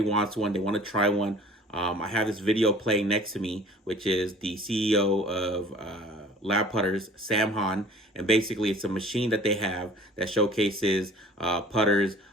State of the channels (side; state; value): both; normal; correlation 0.48